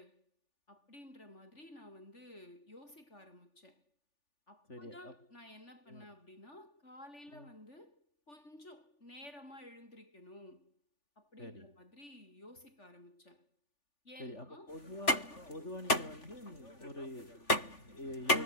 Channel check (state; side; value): late; right; 3.4 ms